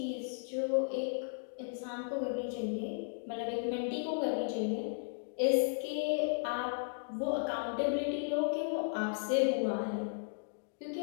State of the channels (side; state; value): right; silent; digital silence